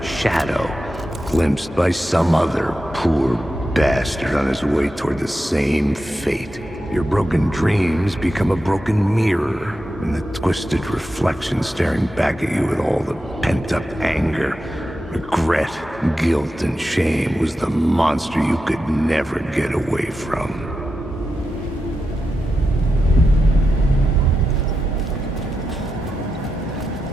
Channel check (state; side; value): normal; both; correlation 0.89